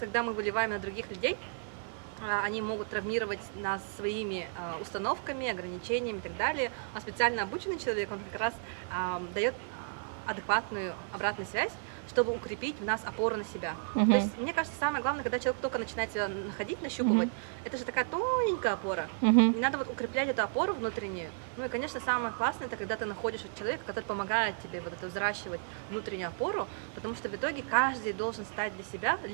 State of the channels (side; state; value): left; silent; 56 dB below the other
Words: мы выливаем на других людей, они могут травмировать нас своими установками, ограничениями и так далее. А специально обученный человек, он как раз дает адекватную обратную связь, чтобы укрепить в нас опору на себя. То есть, мне кажется, самое главное, когда человек только начинает себя находить, нащупывать, это же такая тоненькая опора. И надо вот укреплять эту опору внутреннюю. Ну и, конечно, самое классное, это когда ты находишь человека, который помогает тебе вот это взращивать внутреннюю опору, потому что в итоге каждый должен стать для себя